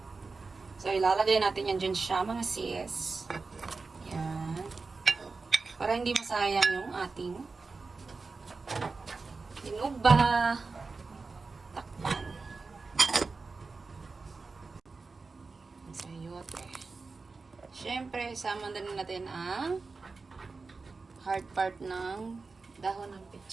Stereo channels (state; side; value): quieter; left; 4.1 dB